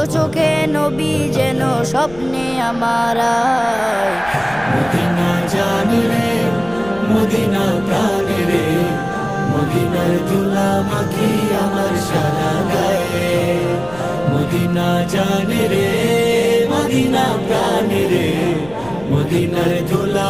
চোখে নবী যেন স্বপ্নে আমার আয়। মদিনা জানে রে, মদিনা প্রাণে রে, মদিনার ধুলা মাখি আমার সারা গায়ে। মদিনা জানে রে, মদিনা প্রাণে রে, মদিনার ধুলা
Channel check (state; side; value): noise; left; rumble, 19 dB below the sound